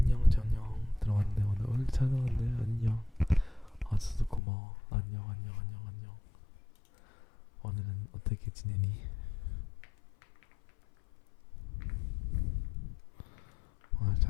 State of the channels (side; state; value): right; drops out; at 4.4 s